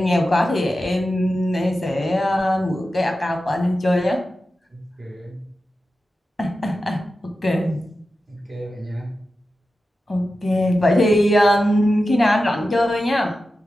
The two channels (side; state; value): both; normal; correlation 0.92